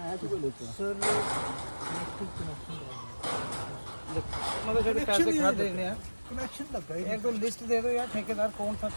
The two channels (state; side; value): inverted; both; correlation -1.00